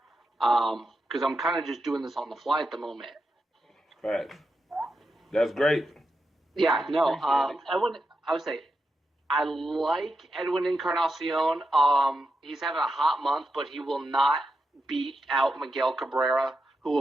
because I'm kind of just doing this on the fly at the moment. Right. That's great. Yeah, no, I would say I like Edwin Encarnacion. He's having a hot month, but he will not beat out Miguel Cabrera, who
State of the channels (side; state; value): both; normal; correlation 0.86